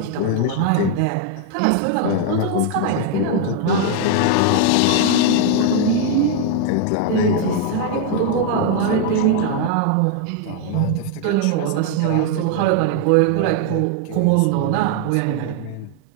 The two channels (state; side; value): different; both; correlation 0.00